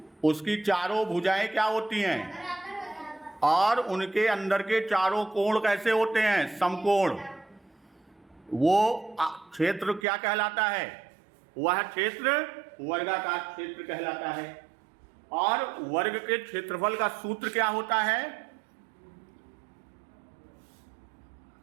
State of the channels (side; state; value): left; drops out; at 10.1 s